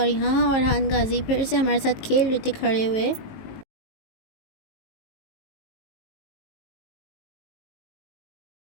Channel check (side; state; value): right; late; 19 ms